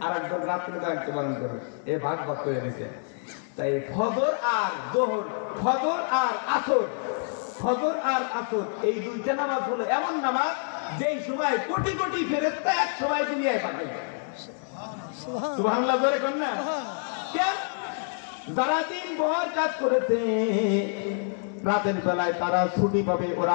আর একদল রাত্রে দায়িত্ব পালন করবে, এ ভাগ ভাগ করে দিয়েছে। তাই ফজর আর জোহর, ফজর আর আসর, ফজর আর আসর এই দুইটা নামাজ হলো এমন নামাজ যেই সময় কোটি কোটি ফেরেশতা এক সময় দুনিয়ায় পাঠায়। সুবহানাল্লাহ বলে কোন না? কেন? যারা দিন ভর কাজ করেছে রাতের বেলায় তারা ছুটি পাবে, ওরা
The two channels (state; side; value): silent; right; 60 dB below the other